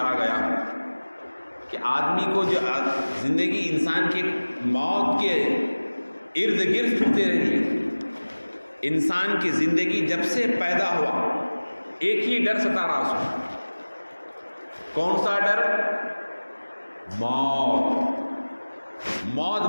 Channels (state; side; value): inverted; both; correlation -1.00